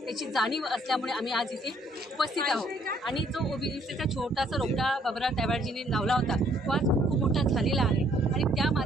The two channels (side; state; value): both; normal; correlation 0.65